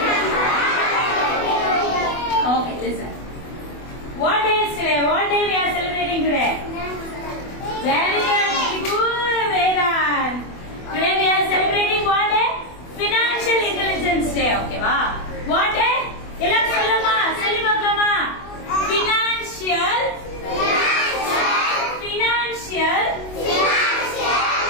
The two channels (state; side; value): late; right; 24 ms